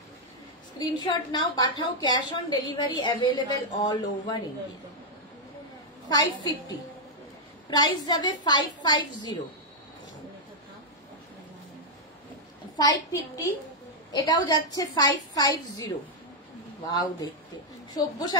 স্ক্রিনশট নাও, পাঠাও, cash on delivery available all over India. 550 price যাবে 550, 550 এটাও যাচ্ছে 550। ওয়াও, দেখতে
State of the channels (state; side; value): normal; both; correlation -0.03